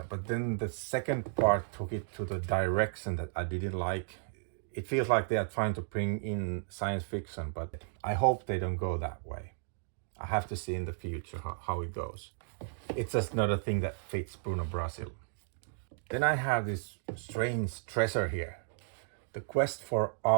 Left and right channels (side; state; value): left; silent; digital silence